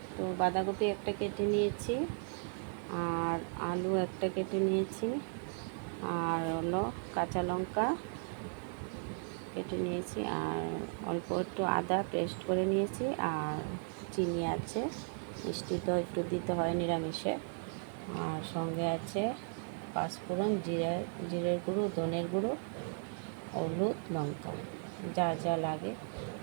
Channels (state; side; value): silent; left; 54 dB below the other